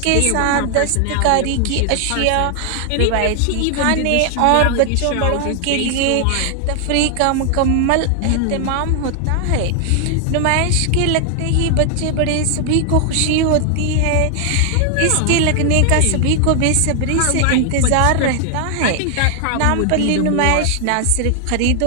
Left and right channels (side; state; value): both; different; correlation 0.00